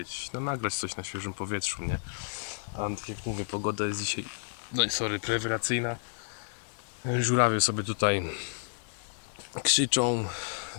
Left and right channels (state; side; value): silent; right; 57 dB below the other